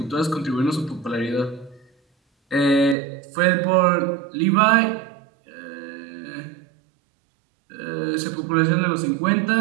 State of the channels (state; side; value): drops out; left; at 3.0 s